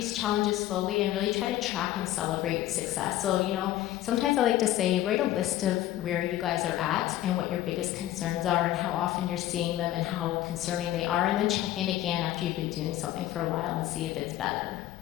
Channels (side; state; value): right; quieter; 14.1 dB